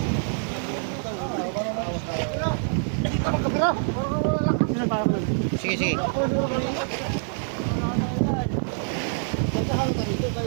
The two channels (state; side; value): silent; left; digital silence